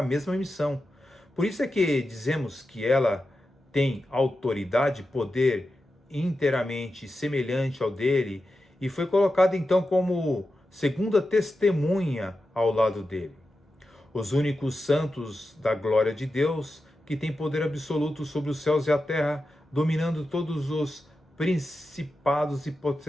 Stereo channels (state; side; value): normal; both; correlation 0.91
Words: mesma missão. Por isso é que dizemos que ela tem autoridade, poder inteiramente semelhante ao dele, e foi colocada então como segunda testemunha ao lado dele. Os únicos santos da glória de Deus, que têm poder absoluto sobre os céus e a terra, dominando todos os principados e